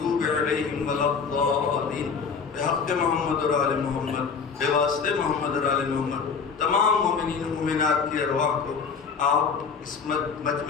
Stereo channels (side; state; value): right; quieter; 5.7 dB